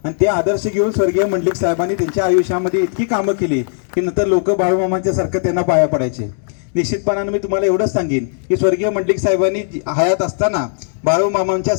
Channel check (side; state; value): right; silent; digital silence